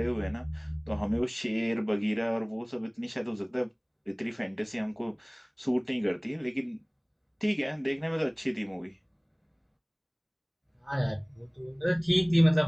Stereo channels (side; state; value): both; identical; correlation 1.00